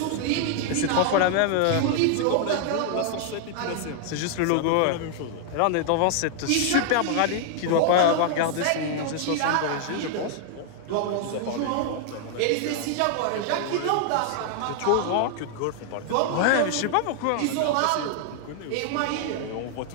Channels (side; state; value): both; different; correlation 0.00